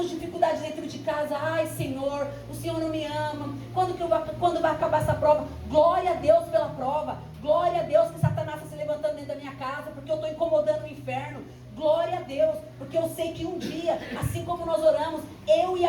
dificuldade dentro de casa. Ai, Senhor, o Senhor não me ama. Quando vai acabar essa prova? Glória a Deus pela prova. Glória a Deus que Satanás está se levantando dentro da minha casa, porque eu estou incomodando o inferno. Glória a Deus, porque eu sei que um dia, assim como nós oramos, eu e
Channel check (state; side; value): identical; both; correlation 1.00